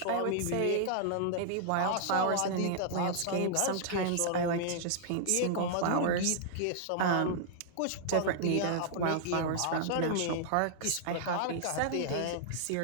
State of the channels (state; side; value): different; both; correlation -0.01